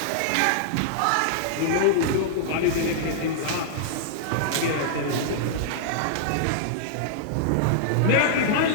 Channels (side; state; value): both; different; correlation -0.01